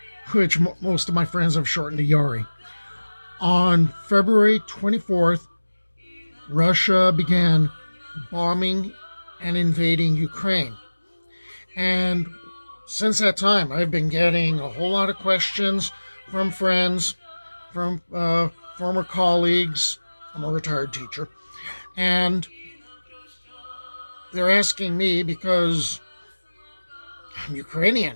which most of my friends have shortened to Yari. On February 24th, Russia began bombing and invading Ukraine. And since that time, I've been getting a whole lot of questions from friends, from former colleagues. I'm a retired teacher. And they're asking me because I'm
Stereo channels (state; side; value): inverted; both; correlation -1.00